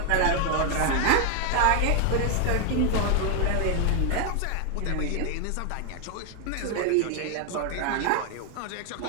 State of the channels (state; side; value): different; both; correlation 0.00